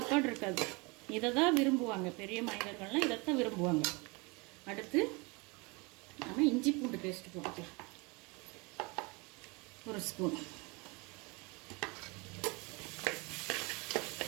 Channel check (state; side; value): quieter; left; 27.8 dB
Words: இருக்காது. இதை தான் விரும்புவாங்க. பெரிய மனிதர்கள்லாம் இதைத்தான் விரும்புவாங்க. அடுத்து நம்ம இஞ்சி பூண்டு பேஸ்ட் போட்டுக்கலாம், 1 ஸ்பூன்.